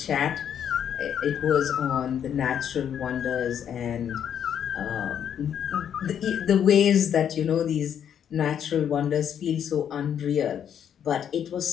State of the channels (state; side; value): quieter; right; 8.9 dB